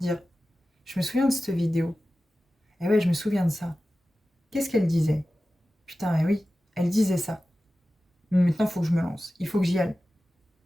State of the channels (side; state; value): both; normal; correlation 0.95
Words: dire « Je me souviens de cette vidéo. Eh ouais, je me souviens de ça. Qu'est-ce qu'elle disait? Putain, eh oui, elle disait ça. Mais maintenant, il faut que je me lance. Il faut que j'y aille.